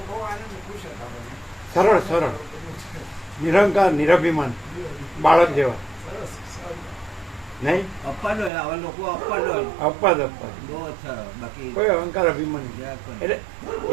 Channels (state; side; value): drops out; left; at 8.5 s